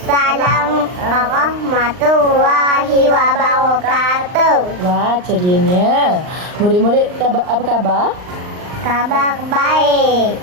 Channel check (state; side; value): late; left; 39 ms